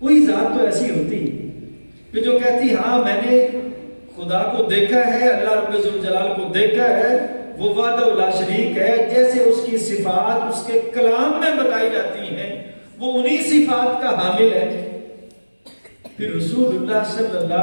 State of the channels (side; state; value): both; inverted; correlation -1.00